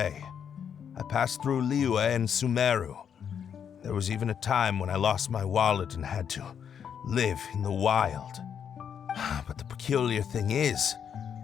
I passed through Liyue and Sumeru. There was even a time when I lost my wallet and had to live in the wild. But the peculiar thing is,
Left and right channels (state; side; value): quieter; right; 8.0 dB